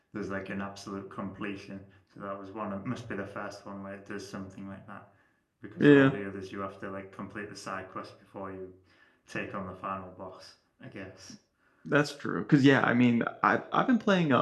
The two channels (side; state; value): both; identical; correlation 1.00